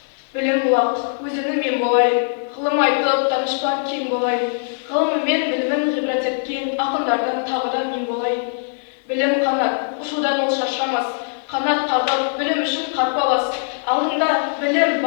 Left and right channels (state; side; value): silent; right; digital silence